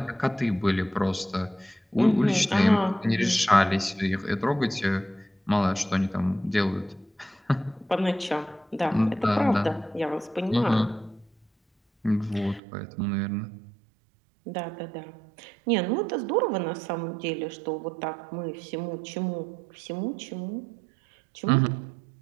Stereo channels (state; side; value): drops out; left; at 12.6 s